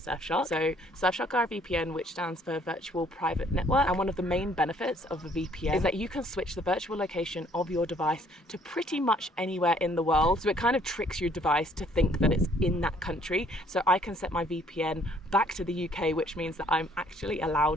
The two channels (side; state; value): both; normal; correlation 0.62